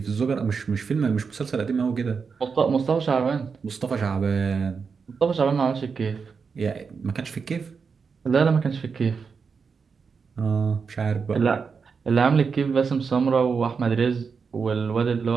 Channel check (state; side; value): quieter; left; 5.5 dB